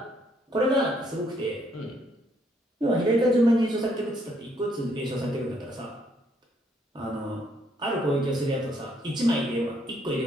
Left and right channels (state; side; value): normal; both; correlation 0.70